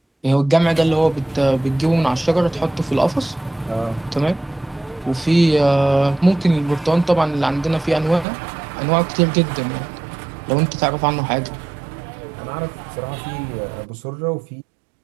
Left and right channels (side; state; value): left; drops out; at 8.2 s